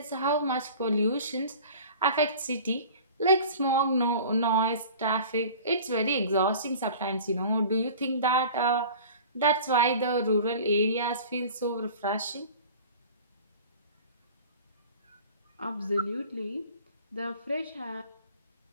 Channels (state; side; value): inverted; both; correlation -0.42